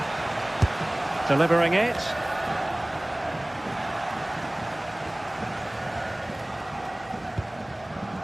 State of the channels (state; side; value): noise; left; hum, 25 dB below the sound